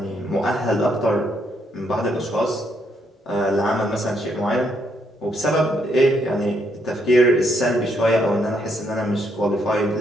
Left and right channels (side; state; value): both; normal; correlation 0.74